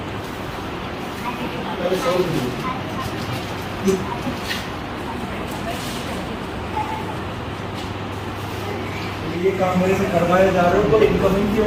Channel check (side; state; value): both; identical; correlation 1.00